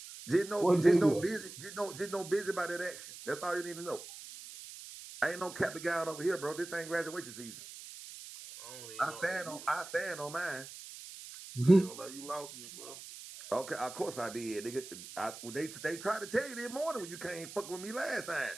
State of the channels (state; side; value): noise; right; hiss, 13 dB below the sound